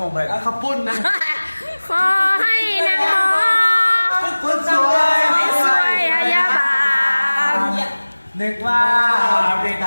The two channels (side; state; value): both; inverted; correlation -1.00